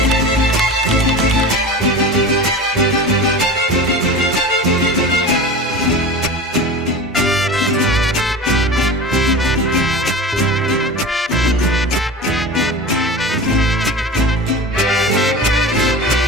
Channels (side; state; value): both; normal; correlation 0.31